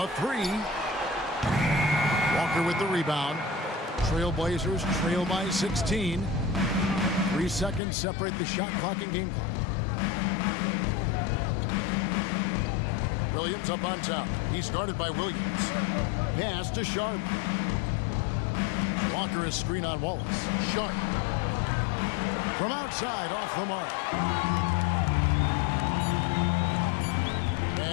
3. Walker with the rebound. Trailblazers trail by 16. 3 seconds separate the shot clock and game clock. Williams up on top. He's guarded by Williams. Pass to Sharp. Walker is screen on Wallace. Sharp. From outside, off the mark.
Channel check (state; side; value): drops out; right; at 7.8 s